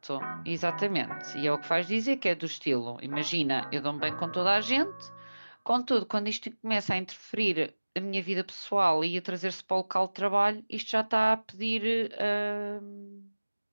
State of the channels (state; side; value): inverted; both; correlation -1.00